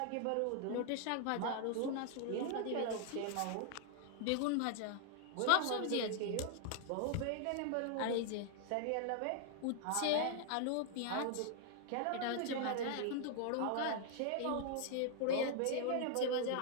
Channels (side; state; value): both; different; correlation 0.00